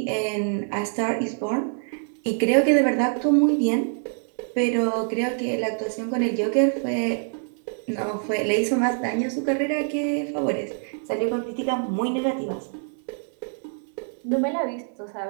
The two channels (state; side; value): silent; left; 58 dB below the other